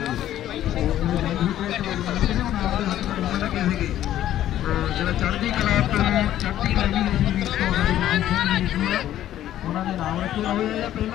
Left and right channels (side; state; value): right; quieter; 12.4 dB